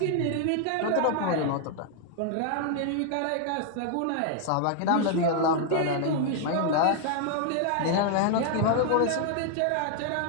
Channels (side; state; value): both; different; correlation 0.00